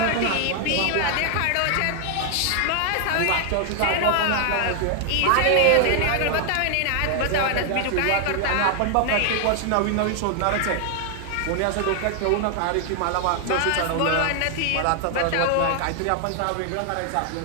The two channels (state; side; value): different; both; correlation 0.00